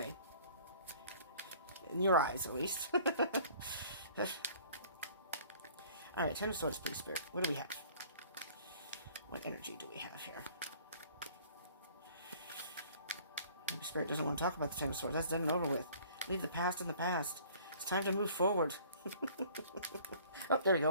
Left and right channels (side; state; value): both; inverted; correlation -0.52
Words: In your eyes, at least. Alright, Ten of Swords, please, Spirit. What do we have? What energy do we have here? Maybe Spirit doesn't want to talk about the Ten of Swords. That's done and over with. Leave the past in the past. It's time to move forward. Oh, there we